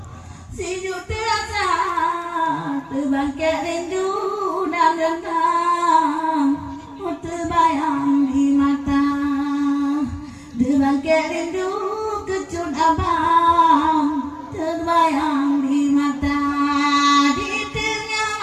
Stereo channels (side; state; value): both; identical; correlation 1.00